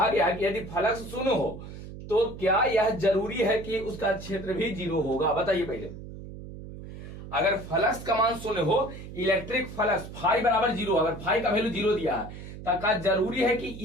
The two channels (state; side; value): noise; right; hum, 12 dB below the sound